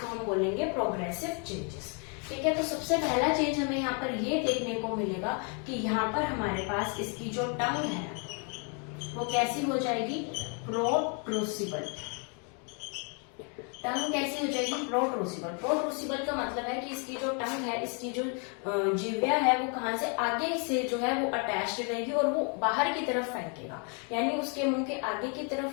हम बोलेंगे प्रोग्रेसिव चेंजेस। ठीक है, तो सबसे पहला चेंज हमें यहाँ पर ये देखने को मिलेगा कि यहाँ पर हमारे पास इसकी जो टंग है वो कैसी हो जाएगी, प्रोट्रूसिबल। टंग कैसी हो जाएगी, प्रोट्रूसिबल। प्रोट्रूसिबल का मतलब है कि इसकी जो टंग है, इसकी जो जिह्वा है वो कहाँ से आगे से जो है वो अटैच्ड रहेगी और वो बाहर की तरफ फेंकेगा, यानी उसके मुंह के आगे की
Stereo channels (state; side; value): quieter; right; 37.8 dB